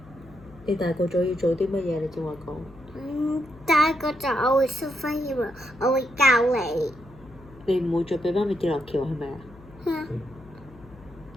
你大個咗要做啲乜嘢？你正話講。大個就我會 superhero，我會教你。你唔會再俾媽咪跌落橋係咪啊？嗯。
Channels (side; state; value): left; noise; hum, 22 dB below the sound